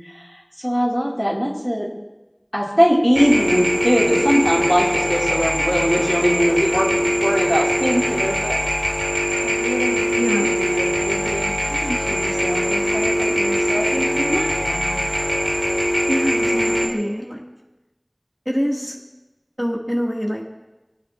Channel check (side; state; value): both; identical; correlation 1.00